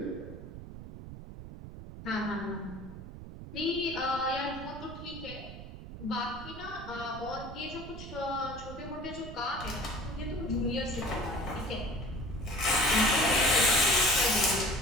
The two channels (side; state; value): right; noise; rumble, 12 dB below the sound